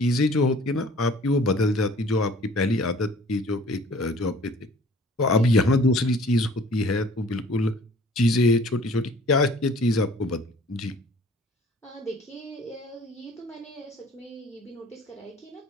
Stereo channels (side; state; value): both; normal; correlation 0.52